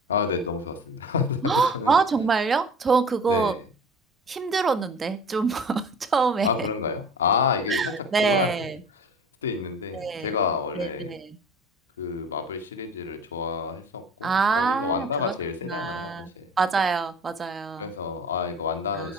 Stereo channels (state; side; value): normal; both; correlation 0.41